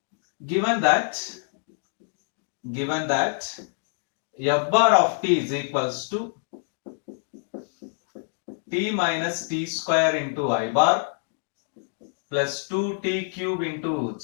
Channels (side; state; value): right; silent; digital silence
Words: Given that f bar of t is equals to t minus t square into I bar plus 2t cube into